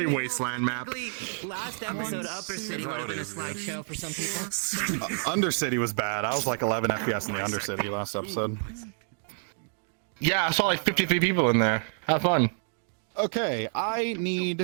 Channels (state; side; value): silent; left; 59 dB below the other